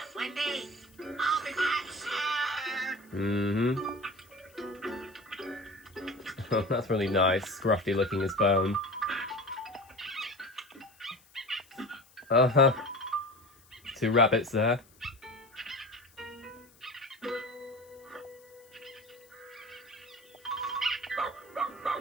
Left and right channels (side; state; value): left; noise; hiss, 28 dB below the sound